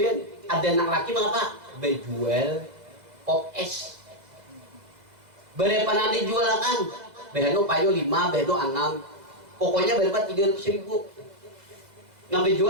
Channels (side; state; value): left; late; 2.1 ms